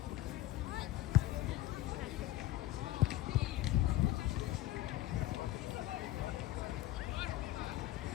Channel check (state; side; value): quieter; right; 15.5 dB